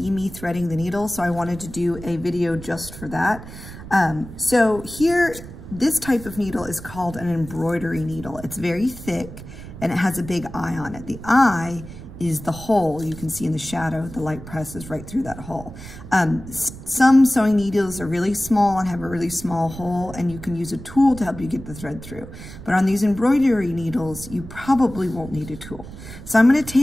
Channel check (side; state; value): right; noise; rumble, 14 dB below the sound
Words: me threading the needle, so I wanted to do a video just for that. So here, this type of needle is called an embroidery needle. It's very thick and it has a big eye on it. The eye is the hole you can see in the shadow. The light presses right through that hole. Some sewing needles are really small and have a really small hole, and you can use a tool to help you get the thread through. But on these embroidery needles, you probably won't need a tool. So I'm gonna